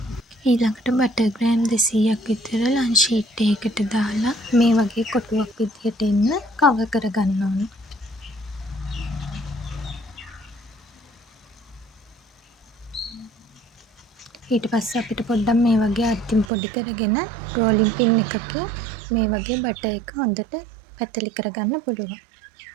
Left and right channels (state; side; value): drops out; left; at 16.4 s